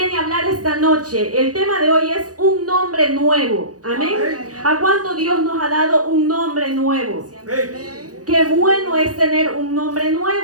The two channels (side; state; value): left; late; 0.67 ms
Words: a hablar esta noche. El tema de hoy es un nombre nuevo. Amén. ¿A cuánto Dios nos ha dado un nombre nuevo? Qué bueno es tener un nombre